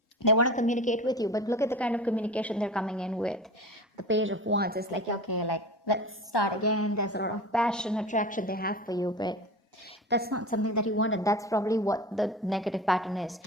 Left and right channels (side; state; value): both; normal; correlation 0.33